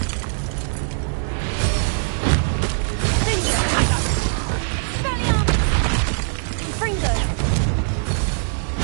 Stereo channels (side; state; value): left; silent; digital silence